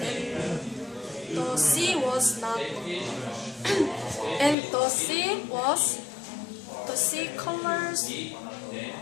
the sea was not, and the sea colors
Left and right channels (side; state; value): right; drops out; at 4.5 s